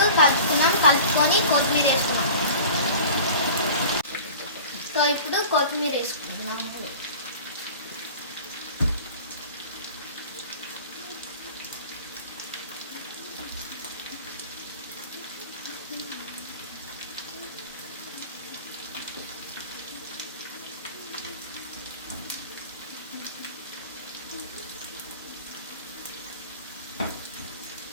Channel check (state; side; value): inverted; both; correlation -0.40